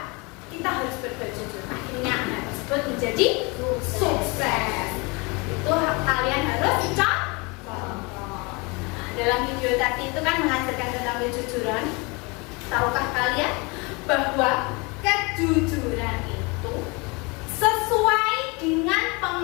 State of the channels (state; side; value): quieter; right; 28.2 dB